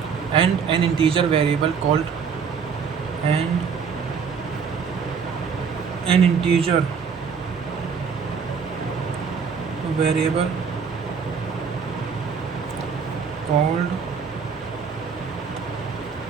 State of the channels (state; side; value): quieter; left; 6.1 dB